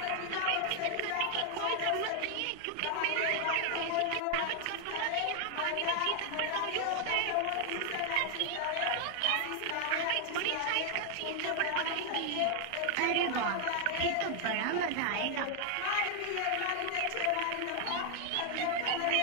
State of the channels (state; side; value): different; both; correlation 0.00